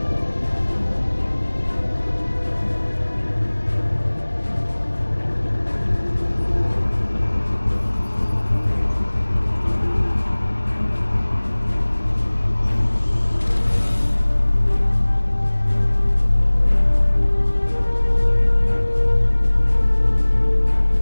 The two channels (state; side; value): inverted; both; correlation -1.00